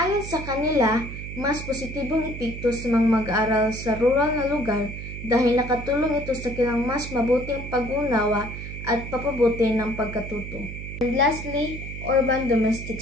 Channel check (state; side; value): noise; right; hum, 9 dB below the sound